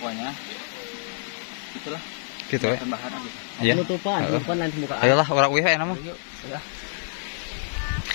itulah Gitu ya. tambahan aja. Iya. Penutupan nanti buka. Ayolah orang wih enak mah. Yuk, ya.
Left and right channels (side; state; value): right; silent; 61 dB below the other